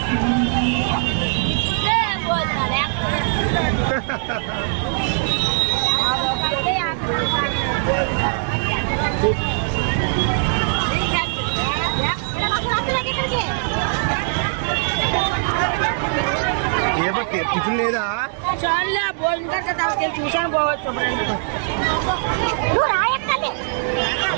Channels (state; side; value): silent; left; 65 dB below the other